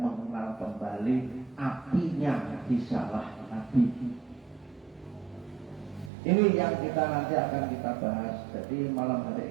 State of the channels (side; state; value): left; drops out; at 6.1 s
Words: kembali apinya risalah Nabi. Ini yang kita nanti akan kita bahas. Jadi malam